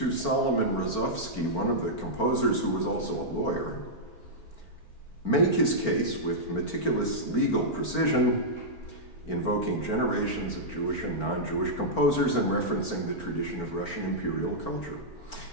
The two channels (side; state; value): right; late; 4.4 ms